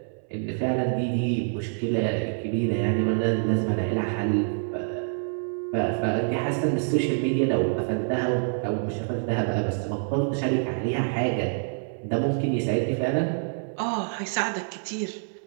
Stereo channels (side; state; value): left; silent; 61 dB below the other